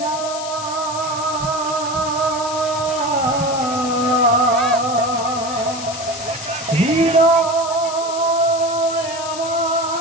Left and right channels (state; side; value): noise; left; hiss, 10 dB below the sound